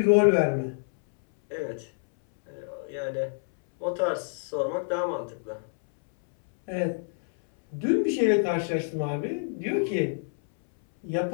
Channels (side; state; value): right; silent; 60 dB below the other